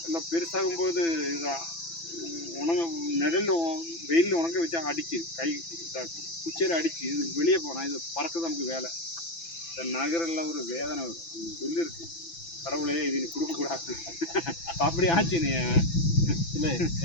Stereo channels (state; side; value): late; right; 6.0 ms